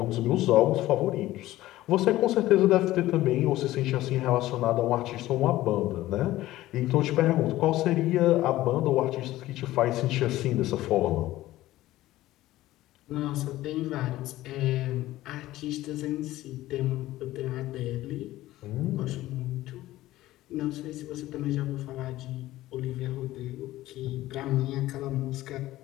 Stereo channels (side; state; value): right; quieter; 15.9 dB